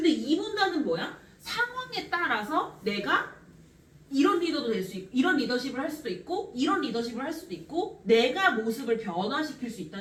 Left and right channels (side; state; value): both; identical; correlation 1.00